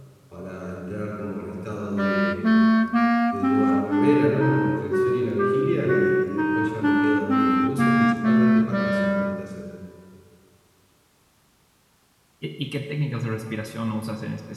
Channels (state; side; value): identical; both; correlation 1.00